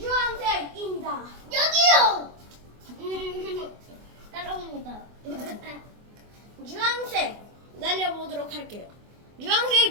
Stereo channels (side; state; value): left; late; 24 ms